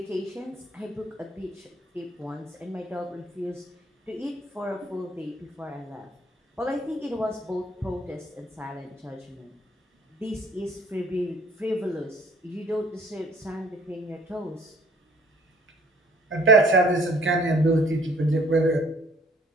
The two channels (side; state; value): both; normal; correlation 0.58